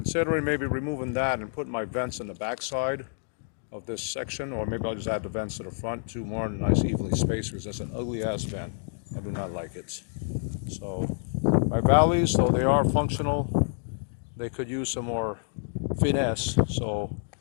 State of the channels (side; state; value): right; silent; digital silence